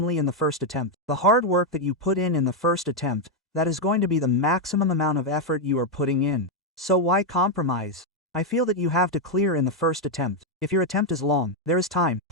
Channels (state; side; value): normal; both; correlation 0.02